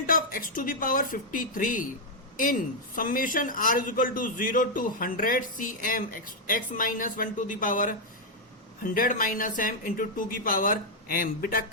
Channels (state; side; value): normal; both; correlation -0.02